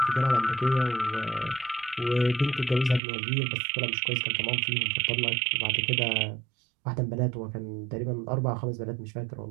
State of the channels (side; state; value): left; drops out; at 3.0 s